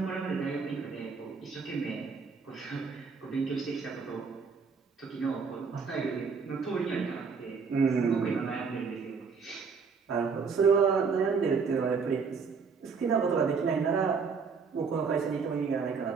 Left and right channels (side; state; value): left; quieter; 5.4 dB